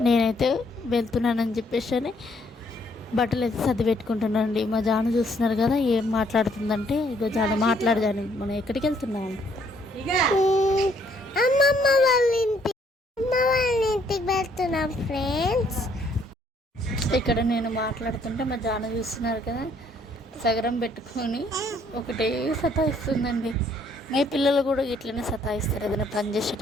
నేనైతే వెళ్తున్నానని చెప్పేసి బట్టలు అయితే సర్ది పెట్టుకుంటున్నానండి. మా జాను చూస్తున్నారు కదా ఏం మాట్లాడుతుందంటే, ఇగో జాను మాట్లాడదాను. మనం ఎక్కడికి వెళ్తున్నాం? అమ్మమ్మ వాళ్ళ ఇంటికి వెళ్తున్నాం ఫ్రెండ్స్. ఇక్కడ నేను మాట్లాడుతుంటే మా జాను చూస్తున్నారు కదా సగరం పెట్టుకొని ఒకటే సతాయిస్తుందండి. మీ పిల్లలు కూడా ఇట్లనే సతాయిస్తారు ఏదైనా పని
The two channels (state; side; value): normal; both; correlation 0.67